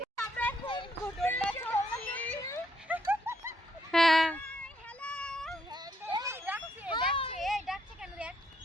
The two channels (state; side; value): normal; both; correlation 0.73